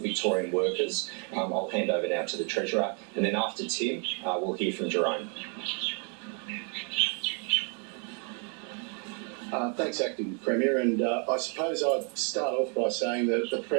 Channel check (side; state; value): left; quieter; 38.3 dB